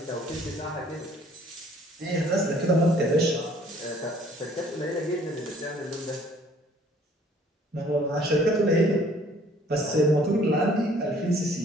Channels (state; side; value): normal; both; correlation 0.57